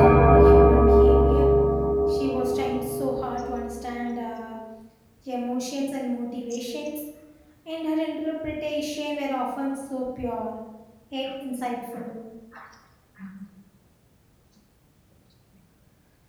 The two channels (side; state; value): both; identical; correlation 1.00